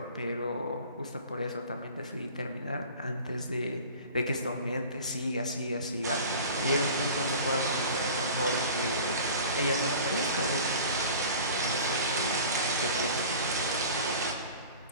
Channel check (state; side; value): inverted; both; correlation -0.41